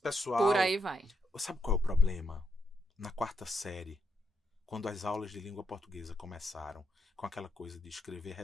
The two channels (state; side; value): normal; both; correlation 0.79